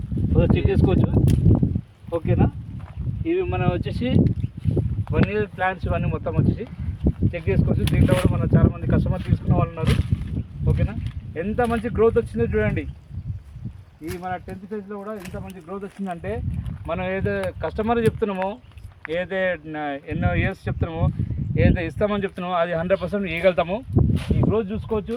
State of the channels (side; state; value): both; identical; correlation 1.00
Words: చెక్ చేసుకోవచ్చు. ఓకేనా, ఇవి మనం వచ్చేసి 1 year ప్లాంట్స్. ఇవన్నీ మొత్తం వచ్చేసి చెక్ చేసుకోవచ్చు. దీంట్లో కూడా మనం చాలామంది కస్టమర్ తీసుకున్న వాళ్ళు ఉన్నారు. ఓకేనా, ఎంత మంచి గ్రోత్ వచ్చిందో చూడండి. ఈ మన 10th ఫేజ్లో కూడా ఎంత మంచి గ్రోత్ వచ్చిందంటే, మనం ఏదో కస్టమర్ చెప్తున్నామో, ఏదైతే ఎన్నో ఇయర్స్ చెప్తున్నామో, ఏదైతే ఇస్తామని చెప్తున్నామో అది 100% ఇవ్వగలుగుతాము. ఈ గ్రోత్